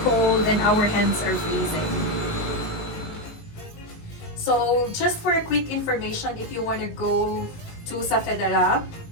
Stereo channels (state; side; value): late; right; 19 ms